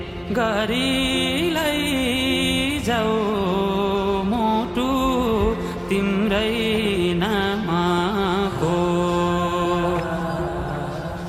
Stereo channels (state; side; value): identical; both; correlation 1.00